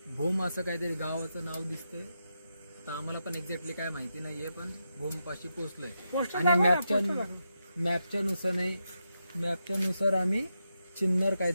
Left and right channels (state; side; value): inverted; both; correlation -0.86